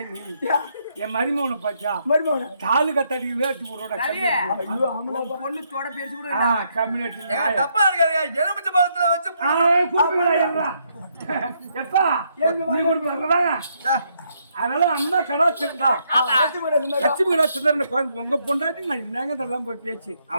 நீ யா, என் மருமகனை பாத்தியா மருமகனே. தாலு கத்தாடி வேட்டு போறோட ஐயோ, ஆமாடா பொண்ணு தோட பேசி கூட கம்யூனிட்டி தப்பா இருக்காங்க. எலுமிச்சை பழத்துல வச்சு எப்பா நீ கொடுக்குறாங்க அதனால அம்மா கடாச்சிருந்தா ஆமா. லட்சுமி கடாச்சிருந்தா உங்க பொண்டாட்டி நான் என்னங்க இதெல்லாம் போய் பேச்சு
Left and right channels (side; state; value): both; inverted; correlation -0.74